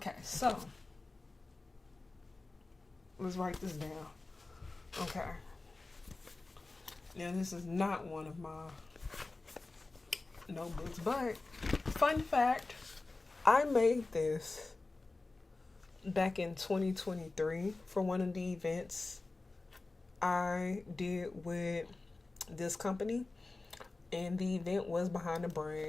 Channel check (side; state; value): right; quieter; 3.4 dB